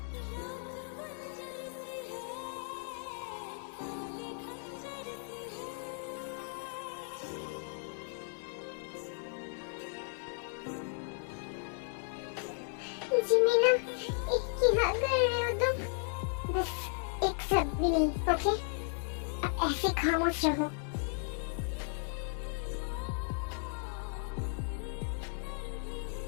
जिमीना, क्या कर रहे हो तुम? बस एक शब्द भी नहीं, ओके? अब ऐसे खामोश रहो।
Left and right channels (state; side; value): silent; right; 54 dB below the other